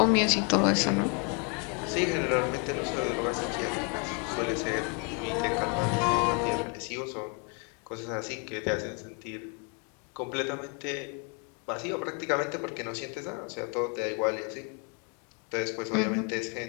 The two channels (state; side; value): quieter; right; 35.6 dB